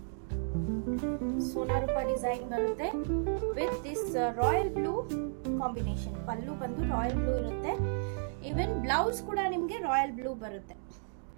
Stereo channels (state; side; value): silent; left; digital silence